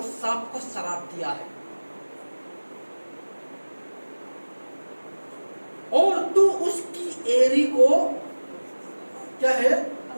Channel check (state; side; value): inverted; both; correlation -1.00